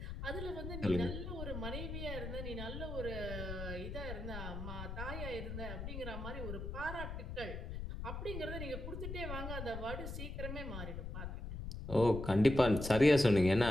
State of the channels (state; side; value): noise; left; rumble, 6 dB below the sound